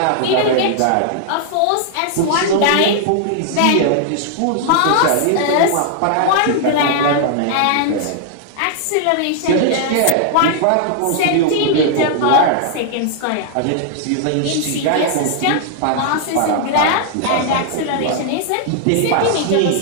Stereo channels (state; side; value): different; both; correlation 0.00